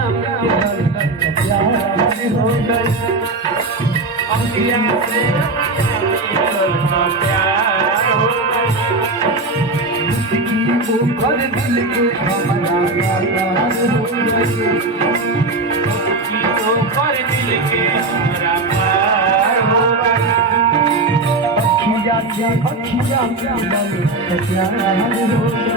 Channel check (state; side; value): quieter; left; 3.2 dB